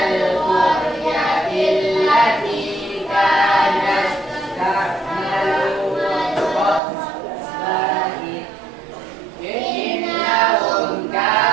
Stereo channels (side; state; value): left; drops out; at 6.8 s